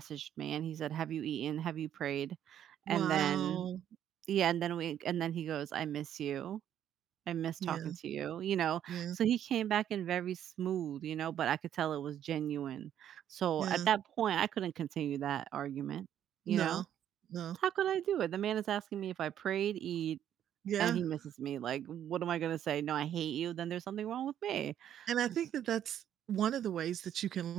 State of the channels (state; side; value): quieter; left; 10.3 dB